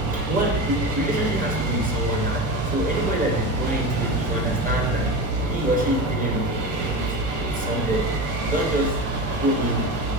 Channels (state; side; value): normal; both; correlation 0.25